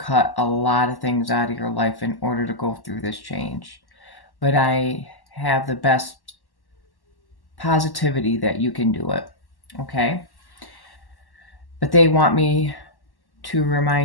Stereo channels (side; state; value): right; late; 1.1 ms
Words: a lot of things out of your life in order to go through this change. But I have the best positivity that you can do it. Okay? But they want me to